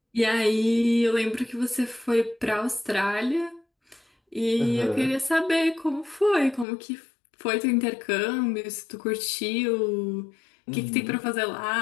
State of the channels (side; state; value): right; drops out; at 6.7 s